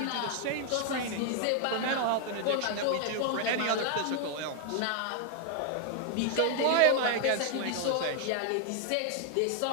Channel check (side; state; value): both; different; correlation 0.00